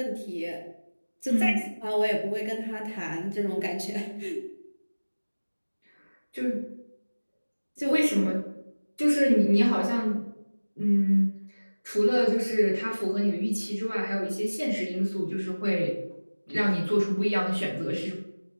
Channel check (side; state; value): both; inverted; correlation -1.00